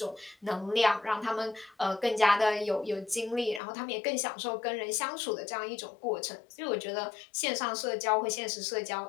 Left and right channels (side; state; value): right; drops out; at 3.6 s